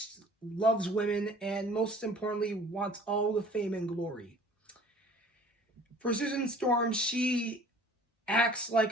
women and most importantly wants all the fame and glory. For Susan Storm, she acts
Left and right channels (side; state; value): both; normal; correlation 0.49